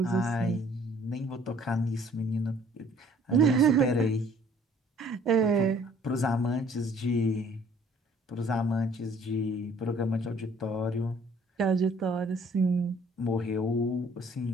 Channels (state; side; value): normal; both; correlation 0.57